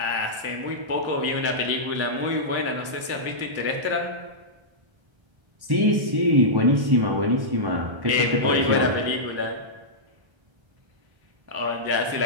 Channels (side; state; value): left; late; 1.3 ms